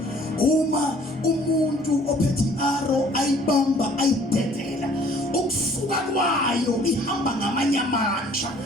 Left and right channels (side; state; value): both; normal; correlation 0.56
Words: Uma umuntu ophethe i-aro ayibamba ayidedela, ukusuka kwayo ihamba ngamanye amandla.